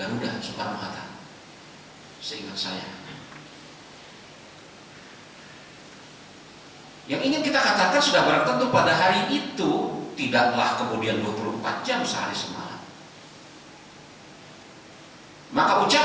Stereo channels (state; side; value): identical; both; correlation 1.00